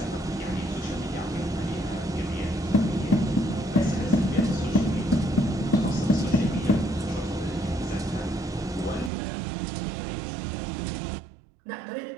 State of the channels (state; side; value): drops out; left; at 9.1 s